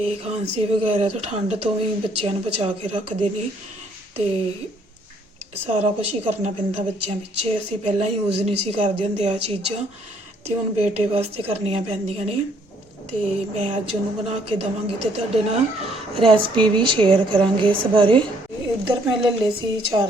ਖਾਂਸੀ ਵਗੈਰਾ ਤੋਂ ਠੰਡ ਤੋਂ ਵੀ ਬੱਚਿਆਂ ਨੂੰ ਬਚਾ ਕੇ ਰੱਖਦੇ ਨੇ। ਤੇ ਸਾਰਾ ਕੁਝ ਹੀ ਕਰਨਾ ਪੈਂਦਾ ਬੱਚਿਆਂ ਪਿੱਛੇ। ਅਸੀਂ ਪਹਿਲਾਂ ਯੂਜ਼ ਨਹੀਂ ਸੀ ਕਰਦੇ ਹੁੰਦੇ ਆ ਚੀਜ਼ਾਂ, ਤੇ ਹੁਣ ਬੇਟੇ ਵਾਸਤੇ ਕਰਨੀਆਂ ਪੈਂਦੀਆਂ ਨੇ। ਤੇ ਮੈਂ ਅੱਜ ਉਹਨੂੰ ਬਣਾ ਕੇ ਦੇਵਾਂਗੀ ਤੇ ਤੁਹਾਡੇ ਨਾਲ ਰੈਸਪੀ ਵੀ ਸ਼ੇਅਰ ਕਰਾਂਗੇ ਇਸ ਬਾਰੇ। ਇੱਧਰ ਮੈਂ ਲੈ ਲਏ ਸੀ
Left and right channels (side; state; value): both; normal; correlation 0.65